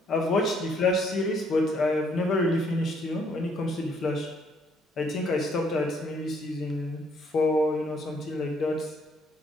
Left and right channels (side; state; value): both; normal; correlation 0.67